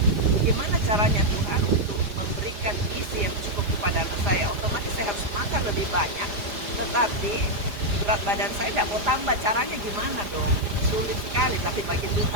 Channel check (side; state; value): left; late; 4.9 ms